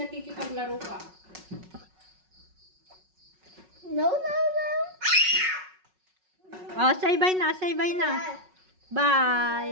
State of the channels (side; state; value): left; late; 5.4 ms